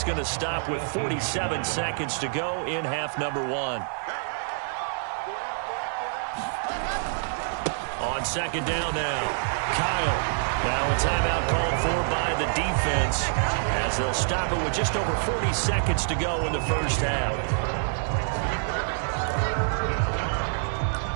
going to stop with 47 seconds to go in half number 1. On second down now, Kyle. Now a timeout called for by the defense, as they'll stop it with just over 40 seconds to go in the first half.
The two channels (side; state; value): left; silent; digital silence